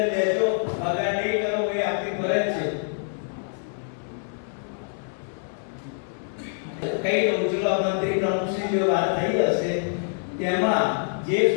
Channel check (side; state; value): right; silent; 61 dB below the other